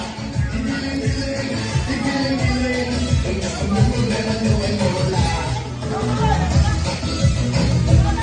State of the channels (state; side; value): identical; both; correlation 1.00